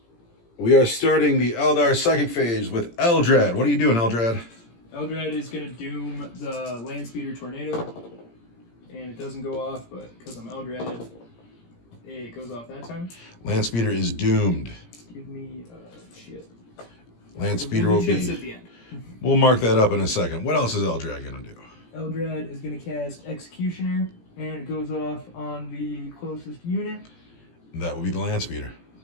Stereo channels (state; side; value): late; right; 17 ms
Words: We are starting the Eldar Psychic phase with Eldrad. What are you doing, Eldrad? Eldrad is going to doom the Land Speeder Tornado, and it doesn't go off, but because I'm Eldrad, it goes off that time. Land Speeder is doomed. Give me shit. Land Speeder will chips be... at the end. We'll mark that up in a second. What else is Eldrad going to do? Eldrad is going to cast Executioner, and it goes off on the closest unit. That will be the Land Speeder.